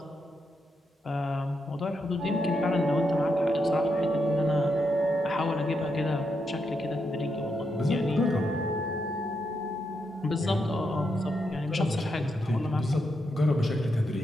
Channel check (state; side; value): normal; both; correlation 0.82